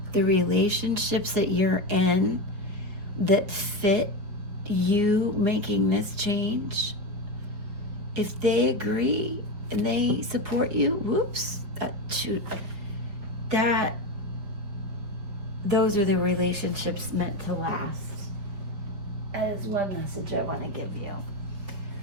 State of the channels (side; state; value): left; late; 5.1 ms